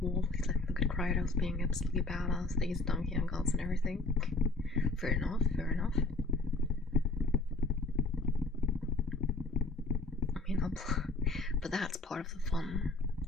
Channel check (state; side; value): quieter; right; 3.4 dB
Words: War, please let me look at Kratos being absolutely badass, these donkey and gods and everything. Fair enough, fair enough. I mean, but that's part of the fun.